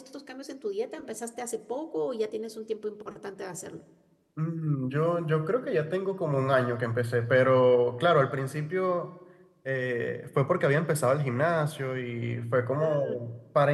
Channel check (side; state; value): both; identical; correlation 1.00